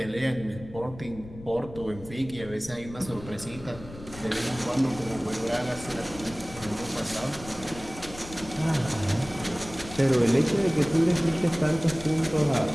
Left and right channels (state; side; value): noise; left; rumble, 15 dB below the sound